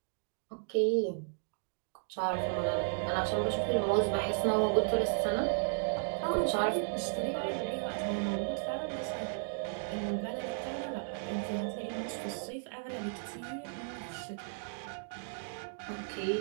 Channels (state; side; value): silent; left; digital silence